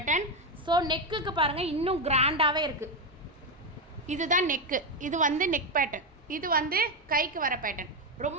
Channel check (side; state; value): both; normal; correlation 0.08